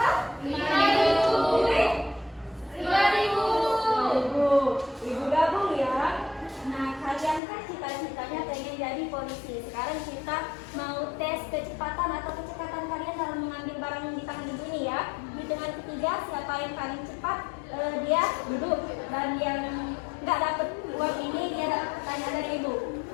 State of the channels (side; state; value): right; drops out; at 7.4 s